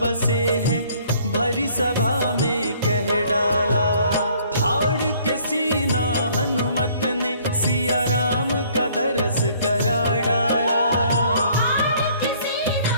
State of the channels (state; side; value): inverted; both; correlation -0.59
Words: बसे हैं, भरी सभा में कह डाला। फाड़ के सीना हनुमत ने सिया राम का दरस करा डाला। फाड़ के सीना